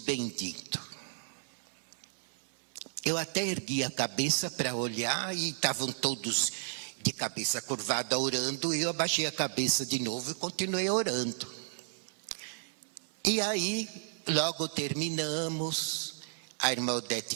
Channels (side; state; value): left; silent; 56 dB below the other